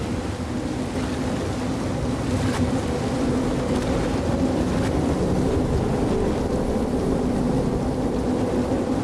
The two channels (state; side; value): identical; both; correlation 1.00